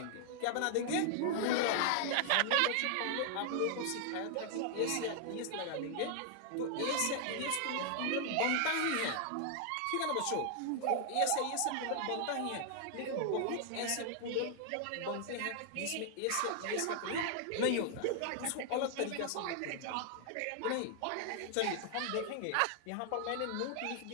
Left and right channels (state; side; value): different; both; correlation 0.00